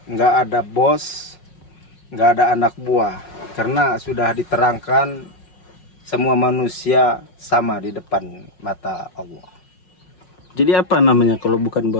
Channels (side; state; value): right; late; 5.5 ms